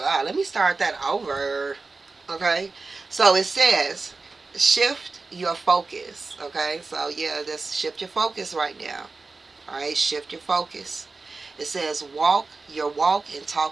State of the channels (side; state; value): left; quieter; 3.9 dB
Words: Let me start that over. Okay? So it says shift your focus. Okay? So yeah, just shift your focus right now. Alright? Shift your focus. It says walk your walk and